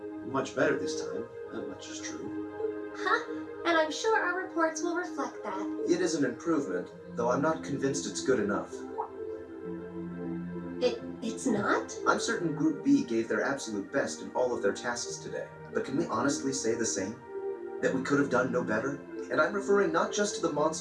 much better this time. That much is true. Huh? And I'm sure our reports will reflect that. It is an improvement, though I'm not convinced it's good enough. It's not? I'm certain Group B gave their absolute best in all of their tasks today. But can we honestly say the same? That we could have done no better? And I'm referring not just to the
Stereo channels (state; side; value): identical; both; correlation 1.00